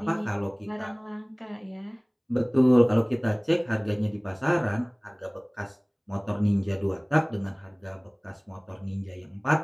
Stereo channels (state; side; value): identical; both; correlation 1.00